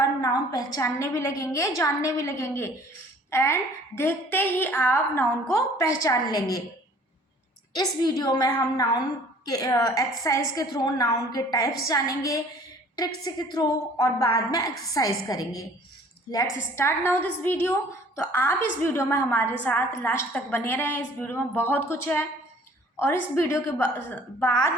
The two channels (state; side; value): normal; both; correlation 0.53